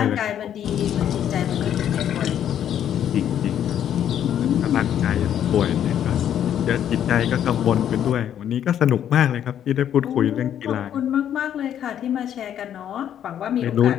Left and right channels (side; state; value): right; quieter; 10.0 dB